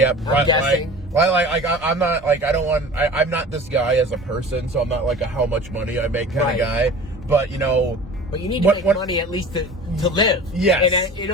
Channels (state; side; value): normal; both; correlation 0.39